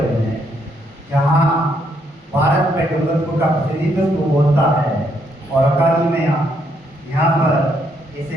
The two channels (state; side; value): normal; both; correlation 0.73